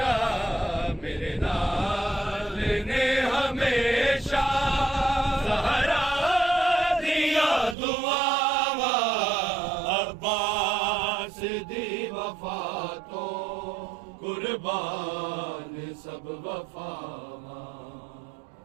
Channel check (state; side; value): drops out; left; at 7.8 s